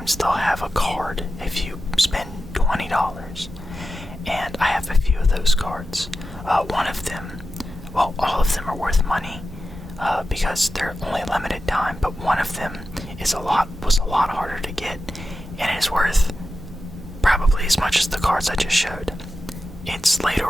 they'll have a card if you spend $20. And I have a few of those cards. One of them, well, all of them are worth money because they're only limited time, but one of them was a lot harder to get, and is worth probably as much as the cards I just showed. It's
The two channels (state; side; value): normal; both; correlation 0.92